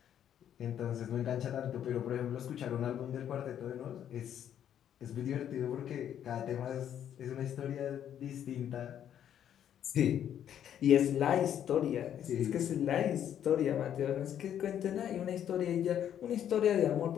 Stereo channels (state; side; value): quieter; right; 9.9 dB